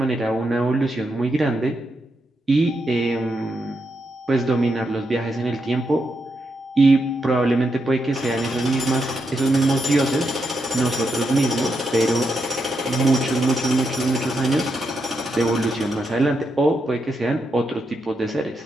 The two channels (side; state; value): both; normal; correlation 0.83